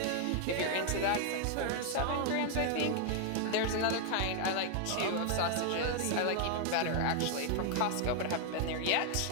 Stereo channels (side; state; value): both; different; correlation 0.00